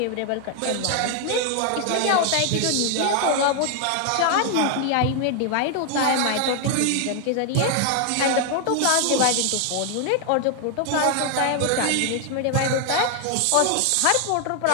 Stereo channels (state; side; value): different; both; correlation 0.00